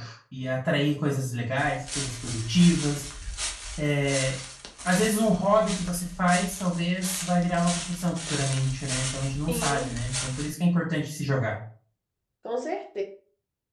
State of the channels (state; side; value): identical; both; correlation 1.00